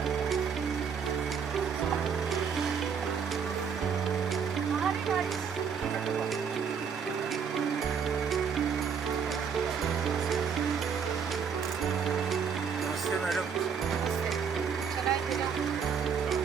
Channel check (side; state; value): left; quieter; 6.7 dB